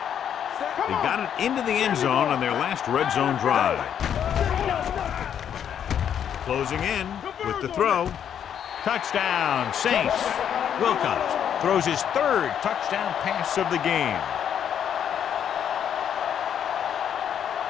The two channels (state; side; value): quieter; right; 8.9 dB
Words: They got it into the end zone on their last red zone drive. Closing in with the throw. Touchdown, Saints. Wilcox throws his 3rd touchdown pass of the game.